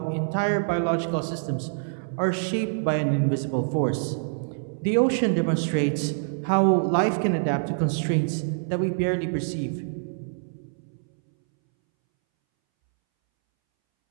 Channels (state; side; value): silent; left; 61 dB below the other